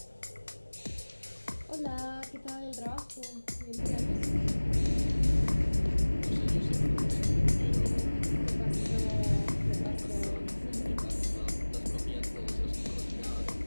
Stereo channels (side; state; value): both; inverted; correlation -1.00